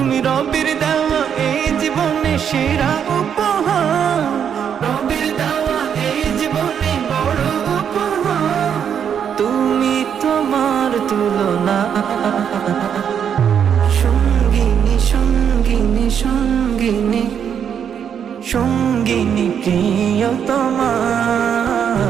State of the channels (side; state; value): left; quieter; 8.1 dB